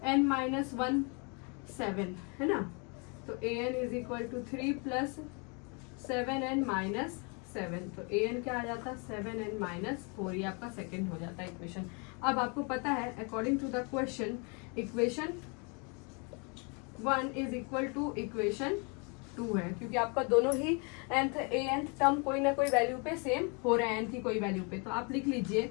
n माइनस 1 7 है ना, तो an is equal to 3 plus 7n minus 7, तो an क्या आ जाता, 7n माइनस 4, ये आपका सेकेंड हो जाता है इक्वेशन। अब आपको पता है according to the question equation 1 is equal to equation 2 है, क्योंकि आपका दोनों ही nth टर्म कोई ना कोई वैल्यू पे सेम हो रहा है, n की कोई वैल्यू पे, तो आप लिख लीजिए।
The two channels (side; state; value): right; quieter; 33.6 dB